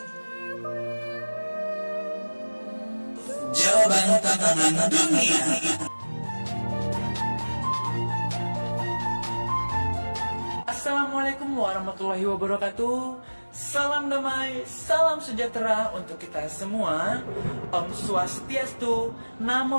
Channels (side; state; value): both; inverted; correlation -1.00